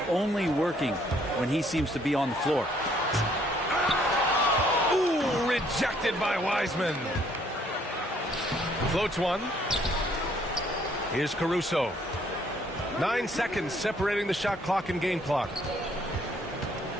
only working when he seems to be on the floor. Ooh, rejected by Wiseman. Floats one. Here's Caruso. 9 seconds separating the shot clock and game clock.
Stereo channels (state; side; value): normal; both; correlation 0.65